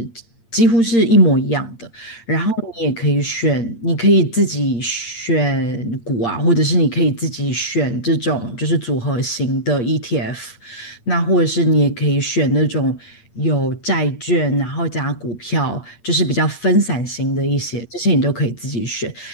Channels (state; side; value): late; right; 8.7 ms